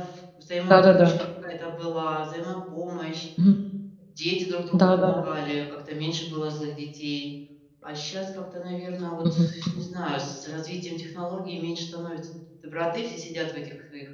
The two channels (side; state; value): both; identical; correlation 1.00